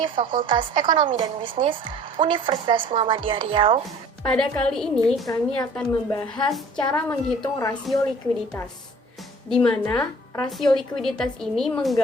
Fakultas Ekonomi dan Bisnis Universitas Muhammadiyah Riau. Pada kali ini kami akan membahas cara menghitung rasio likuiditas, di mana rasio likuiditas ini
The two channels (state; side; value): normal; both; correlation 0.49